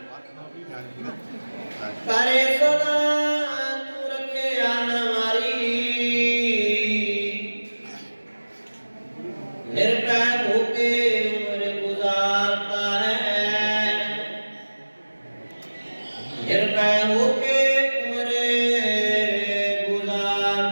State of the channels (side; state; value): both; inverted; correlation -1.00